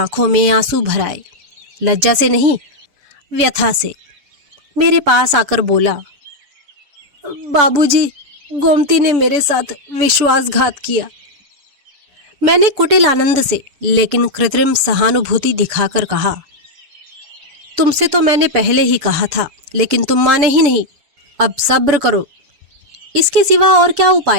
में आंसू भर आए। लज्जा से नहीं, व्यथा से। मेरे पास आकर बोला, बाबूजी, गोमती ने मेरे साथ विश्वासघात किया। मैंने कुटिल आनंद से लेकिन कृत्रिम सहानुभूति दिखाकर कहा, तुमसे तो मैंने पहले ही कहा था, लेकिन तुम माने ही नहीं। अब सब्र करो। इसके सिवा और क्या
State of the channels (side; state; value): left; late; 7.4 ms